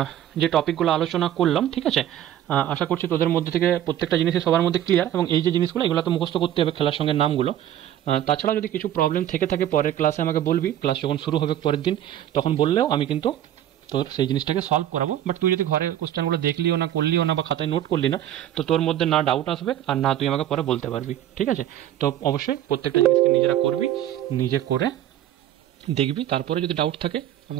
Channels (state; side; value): quieter; left; 11.8 dB